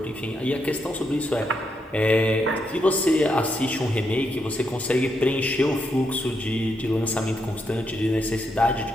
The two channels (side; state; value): both; normal; correlation 0.80